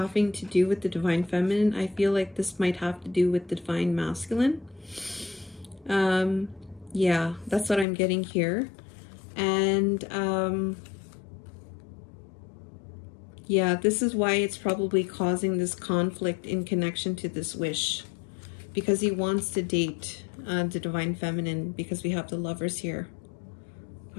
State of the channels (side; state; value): right; drops out; at 7.9 s